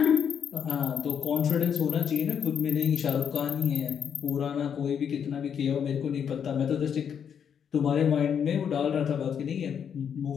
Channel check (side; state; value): right; quieter; 7.9 dB